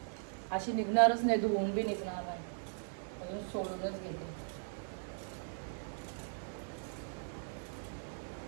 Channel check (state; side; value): silent; left; digital silence